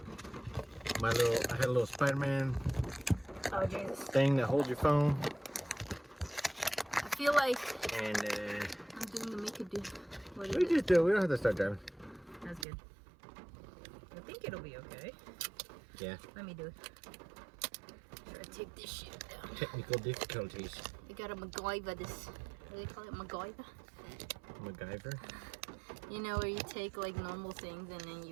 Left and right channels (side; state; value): left; drops out; at 12.7 s